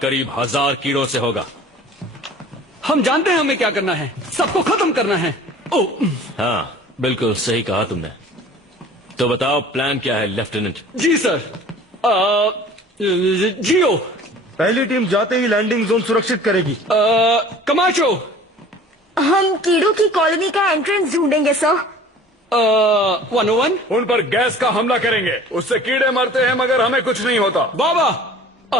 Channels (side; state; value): both; normal; correlation 0.46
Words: करीब 1000 कीड़ों से होगा। हम जानते हैं हमें क्या करना है, सबको खत्म करना है। ओ, हाँ, बिल्कुल सही कहा तुमने। तो बताओ प्लान क्या है लेफ्टिनेंट? जी सर। जियो, पहली टीम जाते ही लैंडिंग जोन सुरक्षित करेगी। कमाचो, हम कीड़ों की कॉलोनी का एंट्रेंस ढूंढेंगे सर। 101, उन पर गैस का हमला करेंगे। उससे कीड़े मरते हैं मगर हमें कुछ नहीं होता। बाबा।